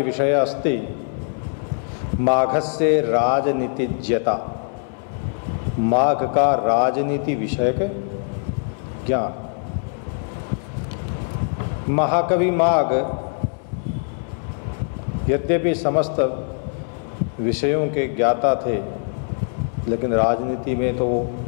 विषय अस्ति माघस्य राजनीतिज्ञता। माघ का राजनीति विषयक ज्ञान। महाकवि माघ यद्यपि समस्त विषयों के ज्ञाता थे, लेकिन राजनीति में तो वो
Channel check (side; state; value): right; silent; 64 dB below the other